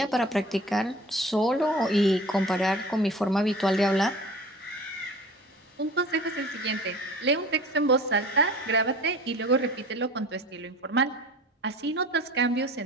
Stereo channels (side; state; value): both; normal; correlation 0.42